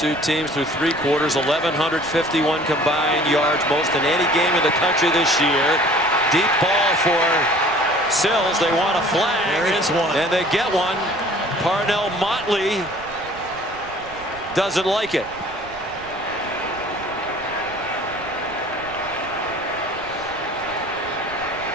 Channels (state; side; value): noise; right; rumble, 19 dB below the sound